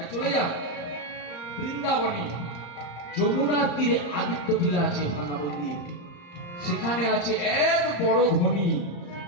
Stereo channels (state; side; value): late; right; 34 ms